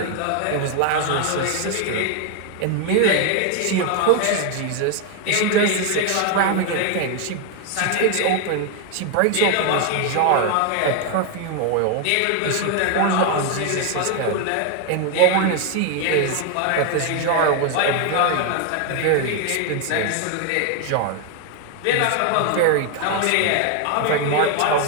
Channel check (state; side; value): different; both; correlation 0.01